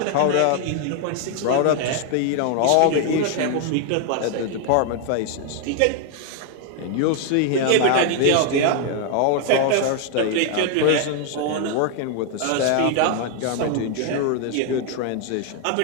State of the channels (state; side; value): different; both; correlation 0.00